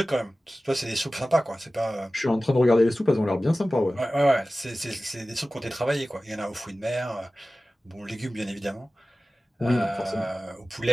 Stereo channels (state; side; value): normal; both; correlation 0.96